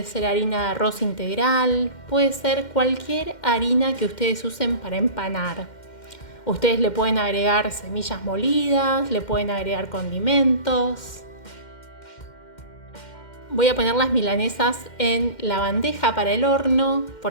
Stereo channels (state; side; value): late; right; 2.1 ms